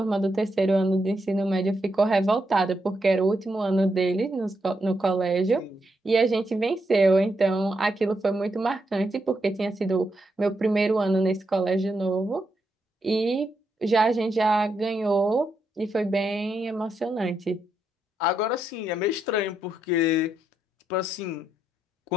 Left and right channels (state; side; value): normal; both; correlation 0.81